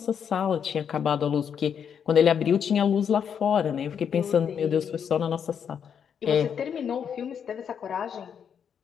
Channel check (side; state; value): right; quieter; 7.7 dB